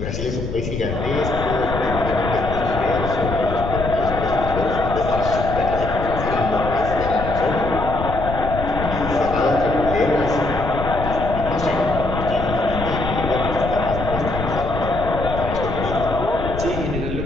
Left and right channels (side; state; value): left; noise; rumble, 6 dB below the sound